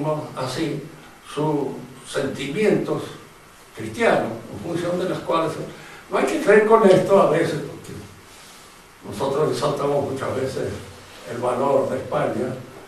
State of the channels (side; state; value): both; identical; correlation 1.00